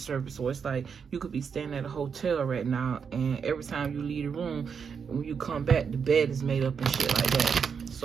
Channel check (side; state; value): left; quieter; 6.4 dB